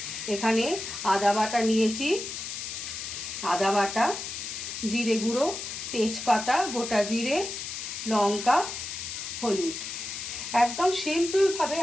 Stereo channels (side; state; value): left; noise; hiss, 6 dB below the sound